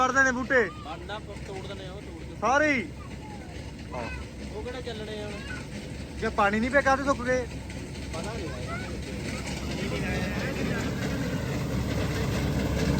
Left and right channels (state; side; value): identical; both; correlation 1.00